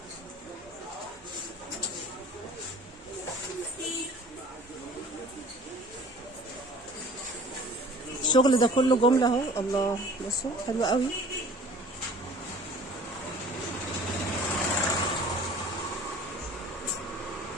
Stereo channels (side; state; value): both; normal; correlation 0.48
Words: الشغل ده كله جمله اهو. الله بصوا حلو قوي.